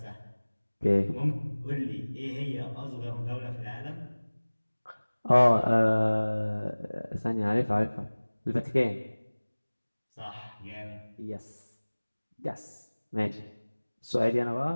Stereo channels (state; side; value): inverted; both; correlation -1.00